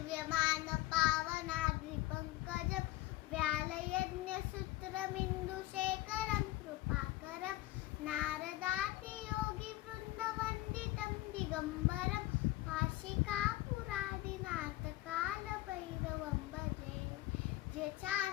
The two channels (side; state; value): right; quieter; 17.1 dB